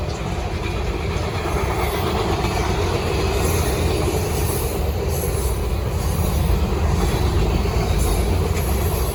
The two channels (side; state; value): both; identical; correlation 1.00